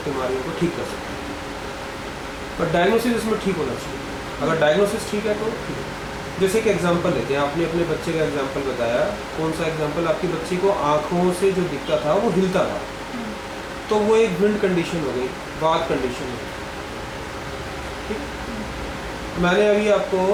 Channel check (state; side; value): identical; both; correlation 1.00